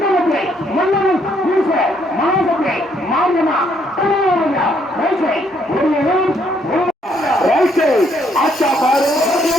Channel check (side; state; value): both; normal; correlation 0.70